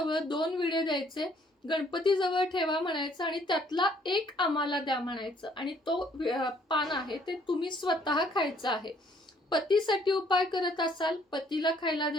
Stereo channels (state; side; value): normal; both; correlation 0.63